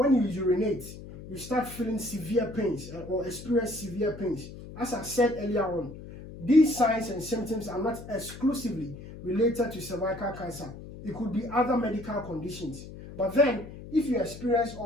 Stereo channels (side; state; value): left; noise; hum, 14 dB below the sound